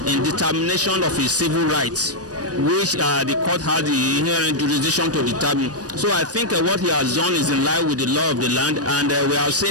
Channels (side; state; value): left; late; 0.68 ms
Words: in determination of his civil rights, which the court has the inherent jurisdiction to determine. So I think what he has done is in line with the law of the land, and we have